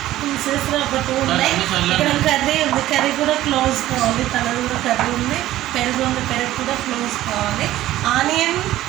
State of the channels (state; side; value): quieter; left; 14.6 dB